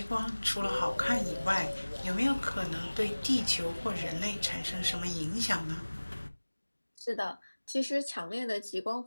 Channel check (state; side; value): inverted; both; correlation -1.00